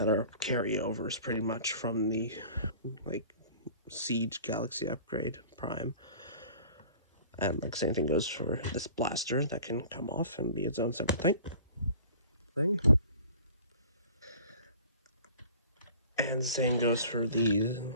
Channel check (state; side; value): inverted; both; correlation -0.45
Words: are carryovers pretty much from the, like, Siege Galaxy Upgrade Prime. And, like, same thing goes for this blaster that can come off and be its own separate thing. And same goes for these